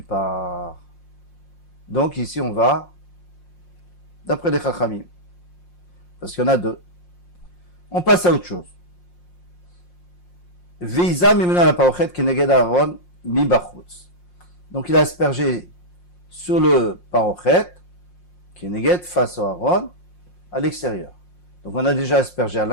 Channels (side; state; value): right; late; 5.6 ms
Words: par. Donc ici on va d'après les Chachamim, parce qu'il y en a deux. On passe à autre chose. Veiza mimena la parochet keneged Aaron mi bachutz. Donc il a aspergé sur le parochet keneged face au Aaron à l'extérieur. Donc on a déjà aspergé à